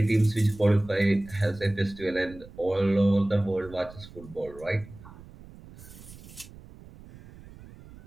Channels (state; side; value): noise; right; rumble, 19 dB below the sound